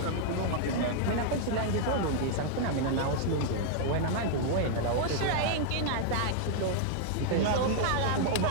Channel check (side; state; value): both; different; correlation -0.01